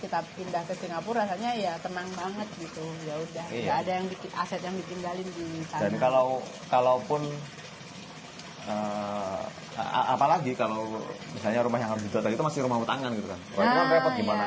pindah ke Singapura rasanya ya tenang banget gitu. Ya udah, Iya. nggak ada yang bikin aset yang ditinggalin di sana. Dan kalaupun apalagi kalau misalnya rumah yang harus dijual tadi itu masih rumah utangan gitu kan. Wah, itu kan Nah, repot gimana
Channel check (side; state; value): both; identical; correlation 1.00